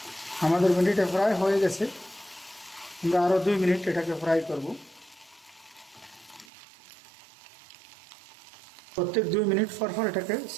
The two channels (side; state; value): left; drops out; at 6.5 s